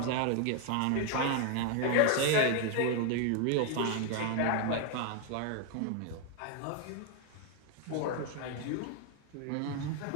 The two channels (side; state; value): both; different; correlation 0.01